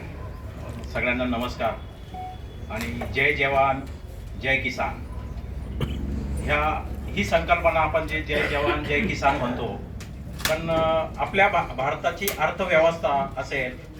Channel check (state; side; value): identical; both; correlation 1.00